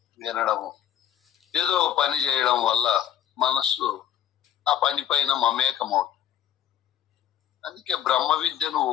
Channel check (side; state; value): right; quieter; 10.6 dB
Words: వినడము, ఏదో ఒక పని చేయడం వల్ల మనస్సు ఆ పని పైన మమేకమవుతుంది. అందుకే బ్రహ్మ విద్యను